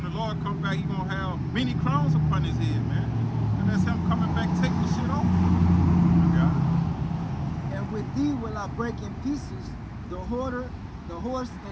the Lord comes back, he gonna have many crowns upon his head, man. And that's him coming back taking the shit off. And with thee will I break in pieces the hoarder, the horse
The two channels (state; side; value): identical; both; correlation 1.00